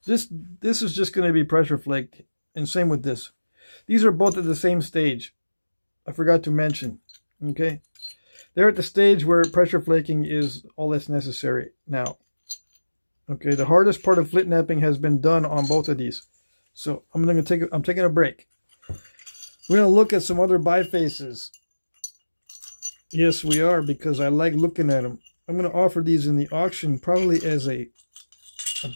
This is just gonna be pressure flaked, and same with this. These are both at the same stage. I forgot to mention. Okay, they're at the stage where pressure flaking is all that's necessary now. Okay, the hardest part of Flintknapping has been done on both of these, so I'm taking a break. We're gonna look at some other bifaces. Yes, we are, because I like looking at them. I'm gonna offer these in the auction, probably as a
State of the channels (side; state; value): both; inverted; correlation -1.00